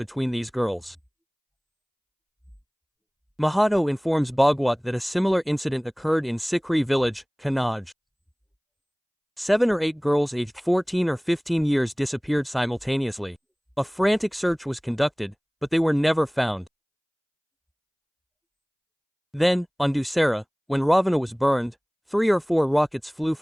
these girls. Mahato informs Bhagwat that a similar incident occurred in Sikri village, Kannauj. 7 or 8 girls aged 14 or 15 years disappeared simultaneously. A frantic search was conducted, but they were never found. Then, on Dussehra, when Ravana was burned, 3 or 4 rockets flew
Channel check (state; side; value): identical; both; correlation 1.00